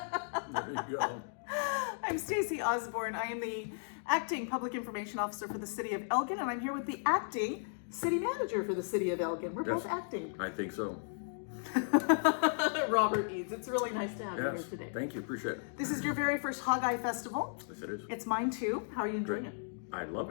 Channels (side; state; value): right; silent; digital silence